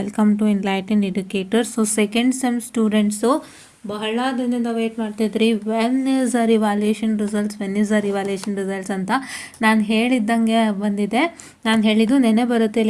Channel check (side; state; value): both; identical; correlation 1.00